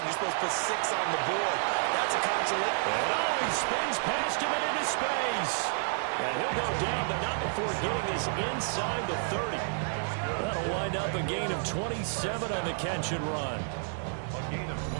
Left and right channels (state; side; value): silent; left; digital silence